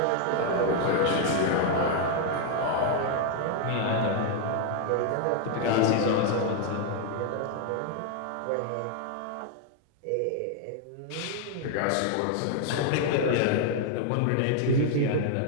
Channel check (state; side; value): different; both; correlation 0.00